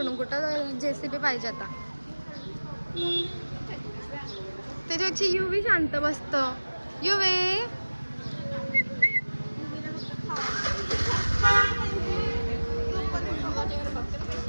कुठं JCB पाहिजे आता. त्याच्यापेक्षा युवी शांत बसतं. युवे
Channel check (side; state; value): both; inverted; correlation -1.00